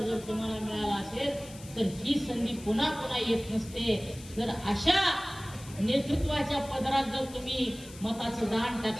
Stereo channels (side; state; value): left; noise; hiss, 18 dB below the sound